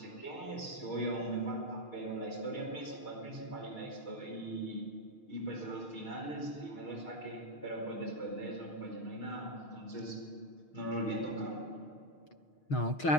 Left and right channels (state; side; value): late; right; 6.4 ms